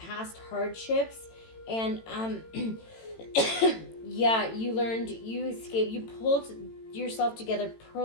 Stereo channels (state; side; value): late; right; 18 ms